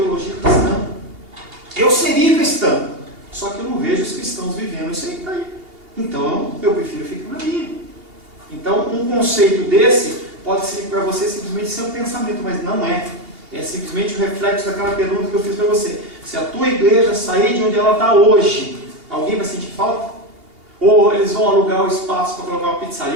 cristã. Eu seria cristão, só que eu não vejo os cristãos vivendo isso aí. Então, eu prefiro ficar na minha. Então, um conceito desse pode ser para você simplesmente ser um pensamento, mas não é. É simplesmente o reflexo daquela pergunta que eu fiz para você. Se a tua igreja sair de onde ela está hoje, alguém vai sentir falta? Ou eles vão alugar o espaço para colocar uma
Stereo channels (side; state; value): left; late; 2.8 ms